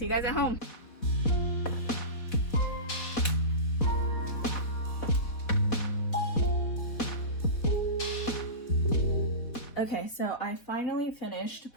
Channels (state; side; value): late; right; 4.1 ms